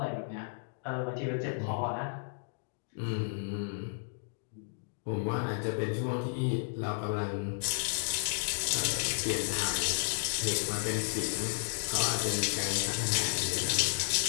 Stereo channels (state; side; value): silent; right; digital silence